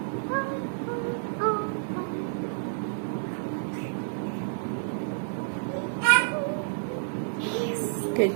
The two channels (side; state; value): left; silent; 58 dB below the other